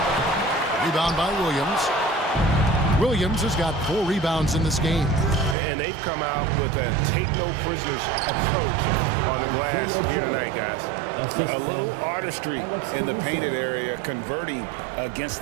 Rebound by Williams. Williams has got 4 rebounds in this game. And they've come out with a take-no-prisoners approach on the glass here tonight, guys. A little artistry in the painted area, converting against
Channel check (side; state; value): left; drops out; at 5.6 s